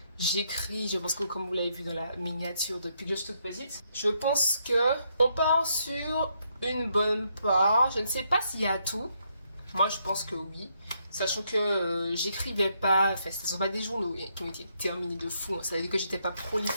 j'écris, je pense que comme vous l'avez vu dans la miniature depuis que je suis toute petite, je pense que on part sur une bonne part. Je ne sais pas s'il y a tout. Moi, je pense que oui. Sachant que j'écrivais pas, enfin, ce ne sont pas des journaux qui ont été terminés de fou. Ça veut dire que j'étais pas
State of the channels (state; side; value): inverted; both; correlation -0.76